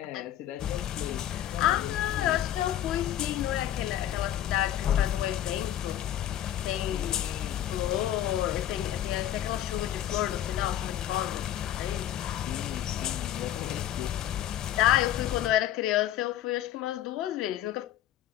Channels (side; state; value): right; quieter; 11.9 dB